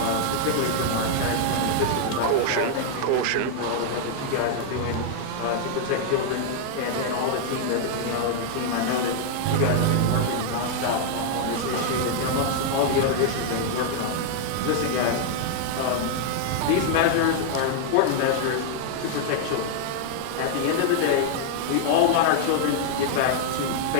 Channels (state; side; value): different; both; correlation -0.01